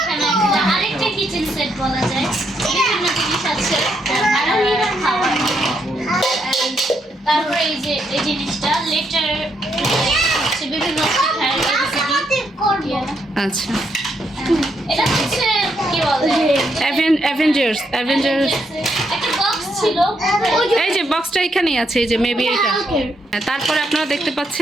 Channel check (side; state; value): both; normal; correlation 0.77